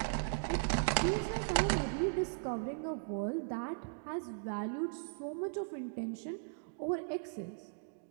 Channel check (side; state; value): left; silent; digital silence